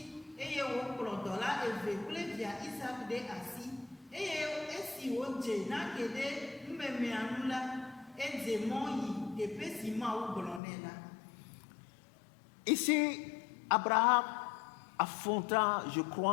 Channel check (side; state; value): right; drops out; at 10.6 s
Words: eye wòkplɔ dɔla eve kple via Isaac ɖe asi eye esi wòdze nake ɖe numemea nu la edze mɔ yi teƒe si Mawu gblɔ nɛ la. Ici, Abraham affronta, je